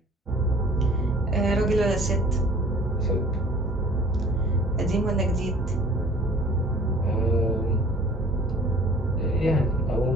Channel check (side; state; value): both; normal; correlation 0.51